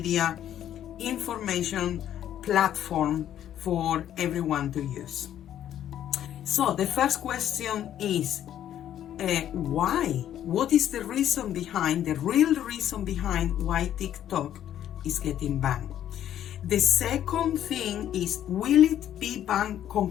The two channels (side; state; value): right; quieter; 11.0 dB